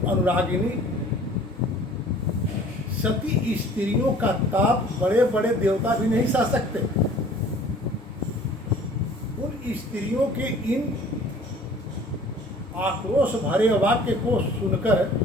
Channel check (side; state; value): both; normal; correlation 0.50